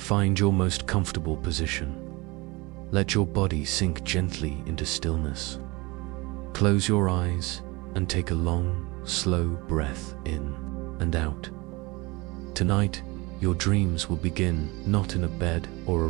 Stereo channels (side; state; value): left; quieter; 24.2 dB